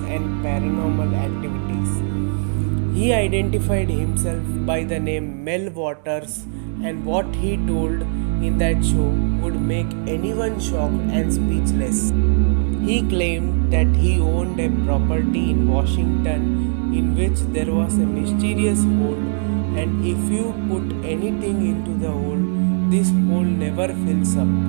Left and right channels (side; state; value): left; silent; digital silence